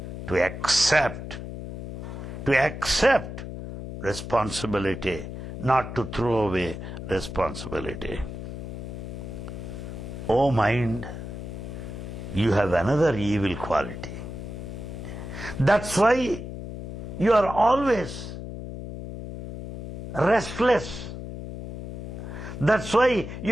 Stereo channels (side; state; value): left; noise; hum, 8 dB below the sound